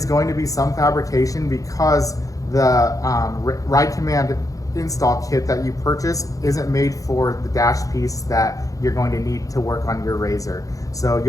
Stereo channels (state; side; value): late; right; 0.17 ms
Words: going to be some fabrication because the ride command install kit that you purchase isn't made for the dash piece that you're going to need to work on your RZR. So